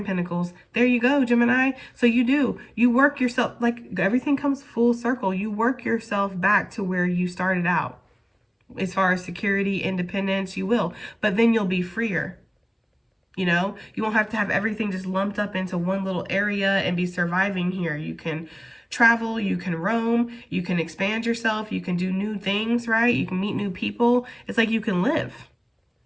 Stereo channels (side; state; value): both; identical; correlation 1.00